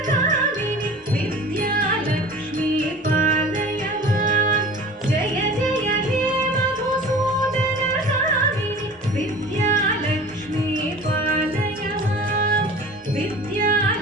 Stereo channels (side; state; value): both; normal; correlation 0.41